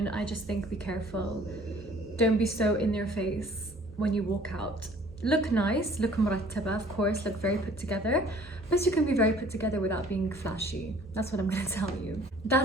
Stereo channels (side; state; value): both; normal; correlation 0.54